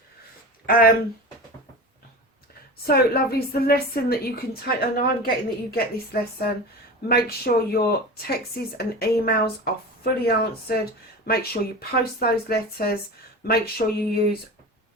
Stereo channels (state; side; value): normal; both; correlation 0.31